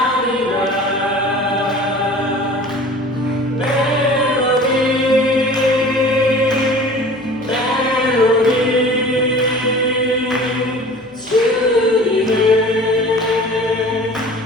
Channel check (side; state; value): both; normal; correlation 0.43